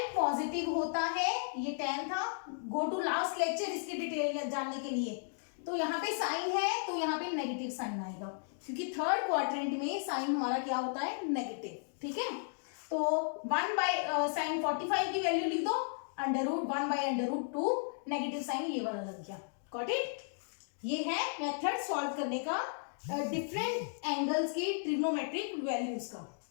पॉजिटिव होता है, ये 10 था। गो टू लास्ट लेक्चर इसकी डिटेल जानने के लिए। तो यहाँ पे साइन है तो यहाँ पे नेगेटिव साइन आएगा, क्योंकि थर्ड क्वाड्रेंट में साइन हमारा क्या होता है, नेगेटिव। ठीक है, तो 1 बाय साइन 45 की वैल्यू लिख दो, √1 बाय √2, नेगेटिव साइन ये वाला लग गया। Got it? ये है मेथड सॉल्व करने का डिफरेंट एंगल्स की ट्रिग्नोमेट्रिक वैल्यूज का।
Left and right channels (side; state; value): right; silent; digital silence